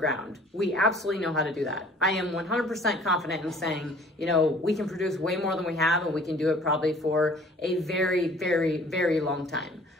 We absolutely know how to do that. I am 100% confident in saying, we can produce way more than we have, and we can do it probably for a very, very, very long time.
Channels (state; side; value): normal; both; correlation 0.52